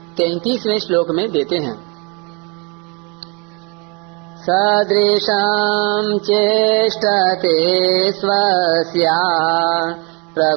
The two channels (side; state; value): left; quieter; 31.3 dB